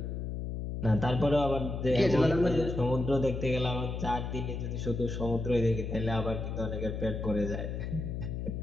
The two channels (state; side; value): noise; left; hum, 4 dB below the sound